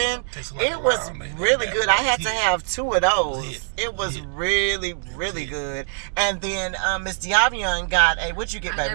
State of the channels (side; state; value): left; silent; digital silence